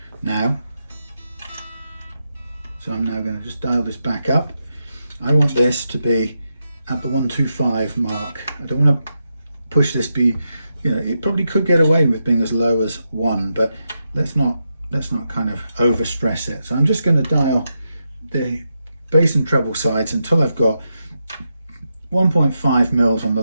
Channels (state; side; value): inverted; both; correlation -0.86